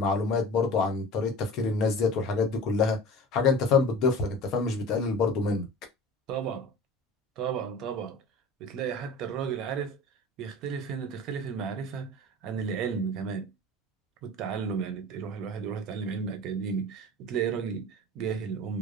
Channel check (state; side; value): normal; both; correlation 0.38